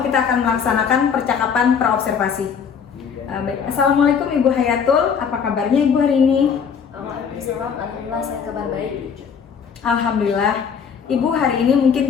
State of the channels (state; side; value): quieter; right; 6.8 dB